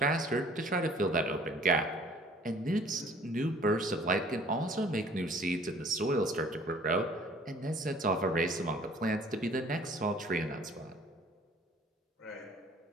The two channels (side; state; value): both; normal; correlation 0.53